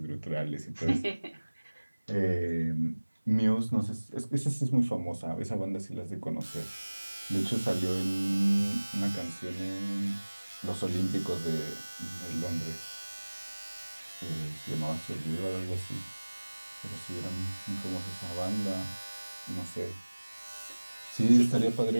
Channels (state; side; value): inverted; both; correlation -1.00